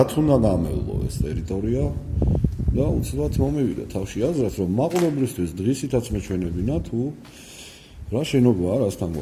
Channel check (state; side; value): identical; both; correlation 1.00